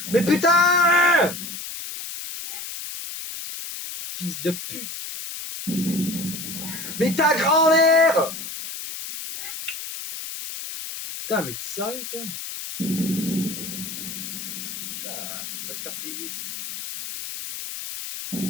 Mais putain! Fils de pute! Mais ta grand-mère! Putain, mais t'es sérieux toi? Putain, va te faire baiser.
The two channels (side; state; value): left; noise; hiss, 8 dB below the sound